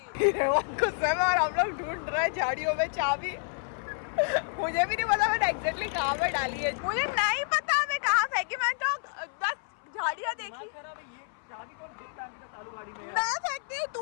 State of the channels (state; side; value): silent; right; 58 dB below the other